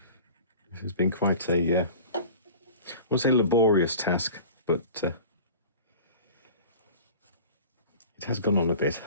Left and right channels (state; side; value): inverted; both; correlation -0.40